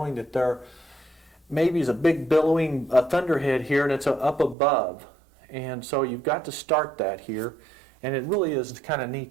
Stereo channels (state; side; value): drops out; left; at 4.5 s